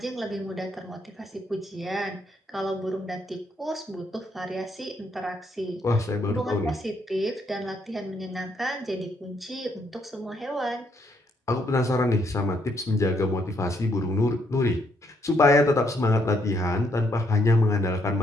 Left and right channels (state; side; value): normal; both; correlation 0.73